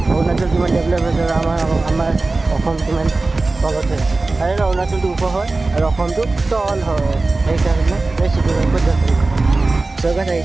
অৰুণাচল কিমান ডেভেলপ হৈছে আৰু আমাৰ অসম কিমান তলত হৈছে আৰু অৰুণাচলটো ওখ হয় আৰু অসমটো তল হয় সেইকাৰণে চৰকাৰ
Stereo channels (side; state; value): left; quieter; 3.3 dB